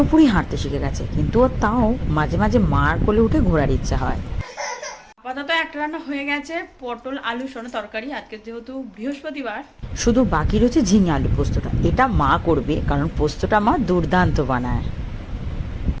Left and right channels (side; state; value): both; identical; correlation 1.00